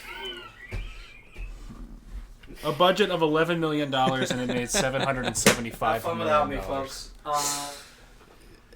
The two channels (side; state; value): both; identical; correlation 1.00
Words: A budget of $11 million and it made $775 Have fun without me, million. folks.